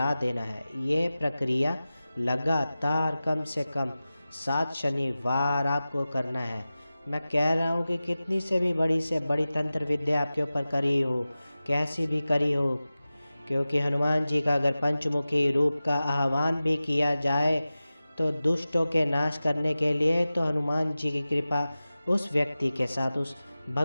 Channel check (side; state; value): both; inverted; correlation -0.96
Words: देना है। ये प्रक्रिया लगातार कम से कम 7 शनिवार आपको करना है। मैं कह रहा हूँ कि कितनी से बड़ी तंत्र विद्या आपके ऊपर करी हो, कैसी भी करी हो, क्योंकि हनुमान जी का अगर पंचमुखी रूप का आह्वान भी किया जाए तो दुष्टों के नाश करने के लिए तो हनुमान जी की कृपा उस व्यक्ति के साथ, उस